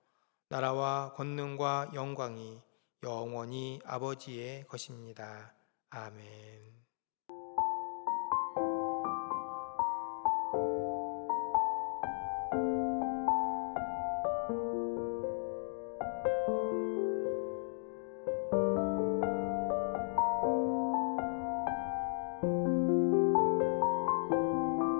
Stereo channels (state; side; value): silent; right; digital silence